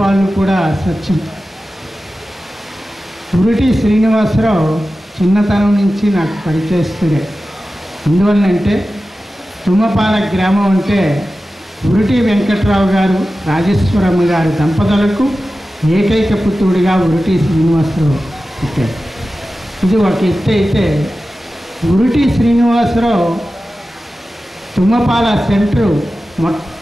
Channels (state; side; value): normal; both; correlation 0.94